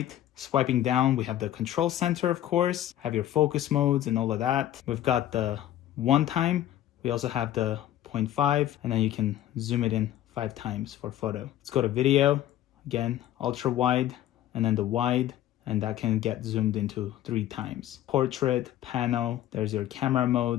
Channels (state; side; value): quieter; right; 12.7 dB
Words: Swiping down, we have the control center, of course, have your focus modes and all of that. We've got the 1 time. We also have the 0.5, and then you can zoom it in 5 times for photo. Let's go to video. Again, ultra wide, and then the wide, and that can get zoomed into 3 times. Portrait, panel, there's your camera